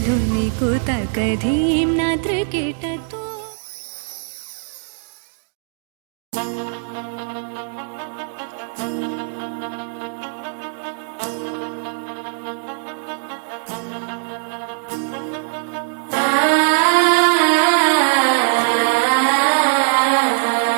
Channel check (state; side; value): silent; left; digital silence